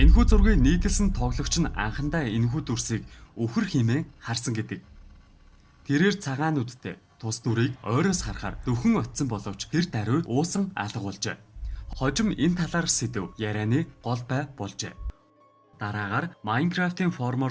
зургийг нийтэлсэн тоглогч нь анхандаа энэхүү дүрсийг өвхөр хэмээн харсан гэдэг. Тэрээр цагаан нүдтэй тус дүрийг ойроос харахаар дөхөн очсон боловч тэр даруй уусан алга болжээ. Хожим энэ талаар сэдв ярианы гол бай болжээ. Дараагаар Minecraft-ийн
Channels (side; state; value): both; identical; correlation 1.00